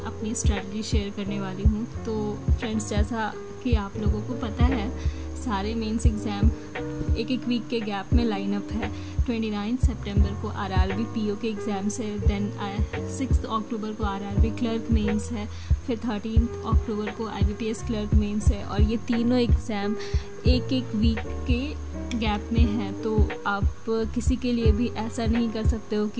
अपनी स्ट्रैटेजी शेयर करने वाली हूँ। तो फ्रेंड्स, जैसा कि आप लोगों को पता है सारे मेंस एग्ज़ाम एक वीक के गैप में लाइन अप है। 29 सितंबर को RRB PO के एग्ज़ाम्स है, देन 6 अक्टूबर को RRB क्लर्क मेंस है, फिर 13 अक्टूबर को IBPS क्लर्क मेंस है। और ये तीनों एग्ज़ाम एक वीक के गैप में है। तो आप किसी के लिए भी ऐसा नहीं कर सकते हो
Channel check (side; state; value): both; identical; correlation 1.00